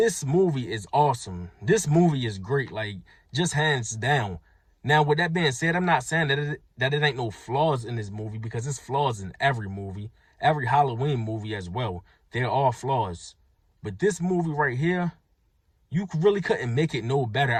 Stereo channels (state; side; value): identical; both; correlation 1.00